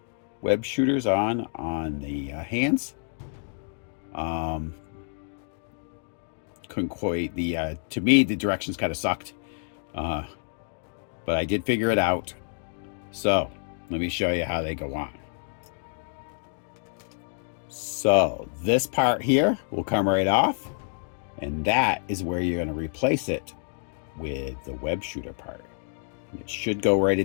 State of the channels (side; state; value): right; silent; digital silence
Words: web shooters on the hands, couldn't quite to me the directions kind of sucked, but I did figure it out. So let me show you how they go on. So this part here will come right off, and that is where you're going to replace it with the web shooter part. And it should go right